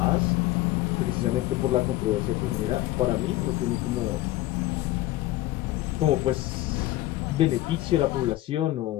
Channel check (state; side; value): quieter; right; 16.4 dB